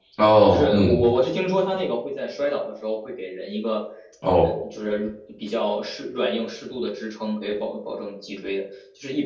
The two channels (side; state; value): both; identical; correlation 1.00